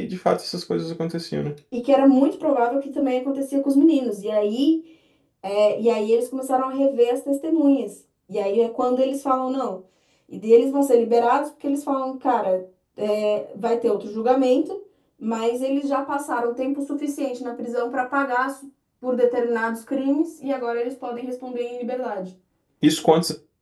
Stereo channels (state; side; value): identical; both; correlation 1.00